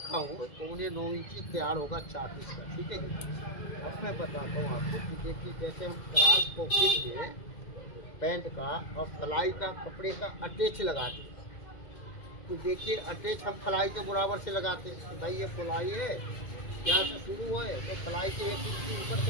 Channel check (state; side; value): late; right; 2.0 ms